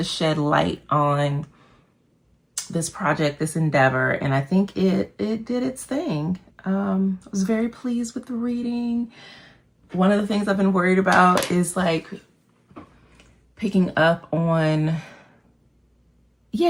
shed light on this project, this endeavor. And I think it did its thing. I was very pleased with the reading. One of the things I've been worried about is like picking up on,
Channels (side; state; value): both; identical; correlation 1.00